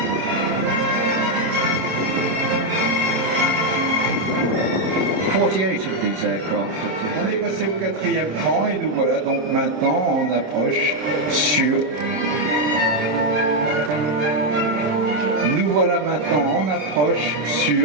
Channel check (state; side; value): late; left; 27 ms